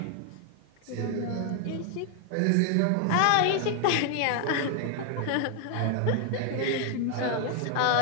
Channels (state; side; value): different; both; correlation 0.00